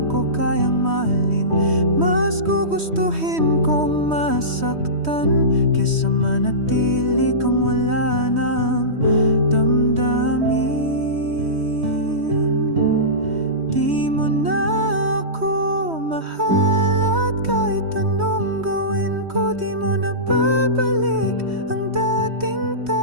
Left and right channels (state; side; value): late; left; 3.1 ms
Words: kayang mahalin. Mas gugustuhin kong masaktan kesa manatili kang wala nang damdamin. Di mo na ako mahal at kahit anong gawin ko, di mo na babalik ang dating